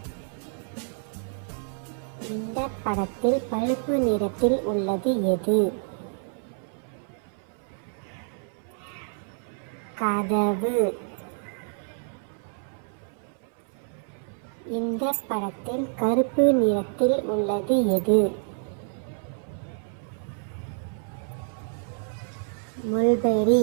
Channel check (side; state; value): left; silent; 59 dB below the other